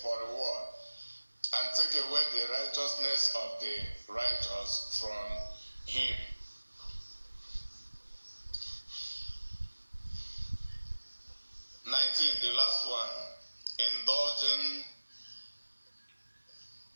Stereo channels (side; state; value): both; inverted; correlation -1.00